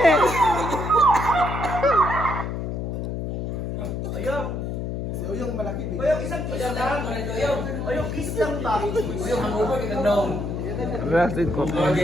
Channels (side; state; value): left; noise; hum, 3 dB below the sound